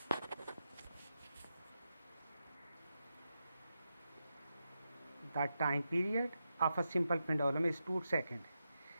the time period of a simple pendulum is 2 second.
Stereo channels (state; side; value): inverted; both; correlation -0.88